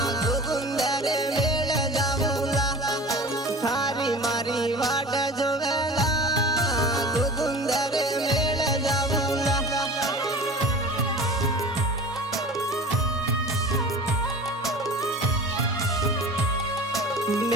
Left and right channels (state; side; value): normal; both; correlation 0.38